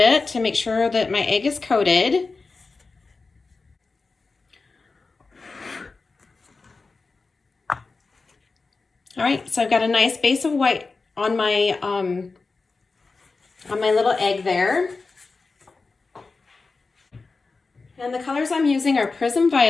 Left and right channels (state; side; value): quieter; right; 4.1 dB